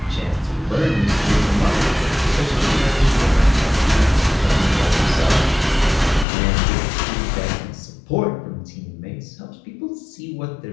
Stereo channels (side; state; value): right; drops out; at 6.2 s